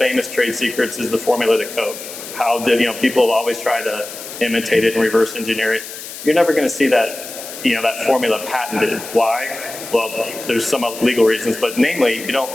trade secrets is the formula to Coke. How did people have always tried to imitate it and reverse engineer it? You're never going to see that that formula patented. Why? Well, there's some legal reasons, but namely,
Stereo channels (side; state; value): left; noise; hiss, 12 dB below the sound